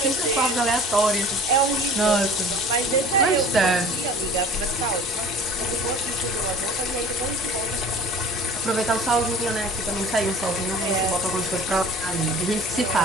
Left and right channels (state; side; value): normal; both; correlation 0.44